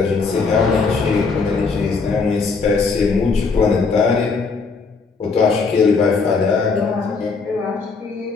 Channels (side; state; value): right; quieter; 4.6 dB